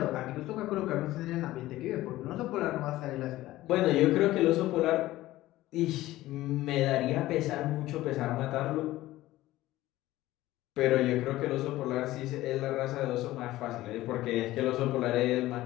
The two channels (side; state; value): right; quieter; 16.4 dB